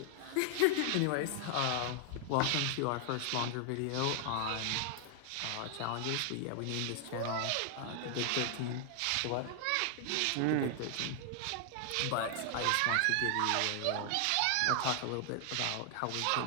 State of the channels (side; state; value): both; different; correlation 0.00